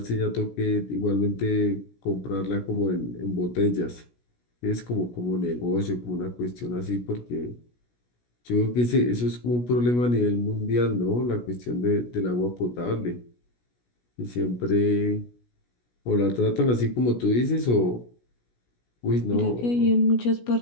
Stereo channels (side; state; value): right; late; 16 ms